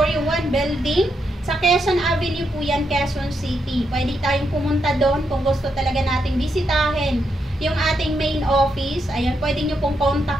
1 Building, sa Quezon Avenue po yan, Quezon City. Pwede tayong pumunta doon kung gusto talaga nating bisitahin yung ating main office. Ayan, pwede nyo pong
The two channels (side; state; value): both; normal; correlation 0.81